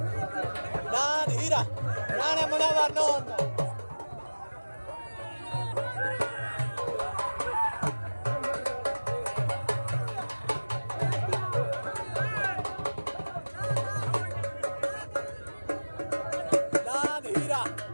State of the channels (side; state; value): both; inverted; correlation -1.00